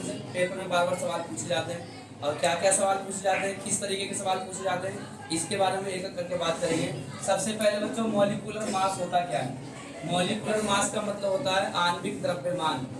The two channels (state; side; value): identical; both; correlation 1.00